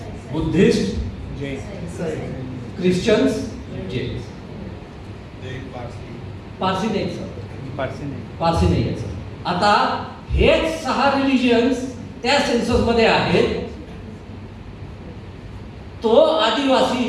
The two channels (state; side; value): identical; both; correlation 1.00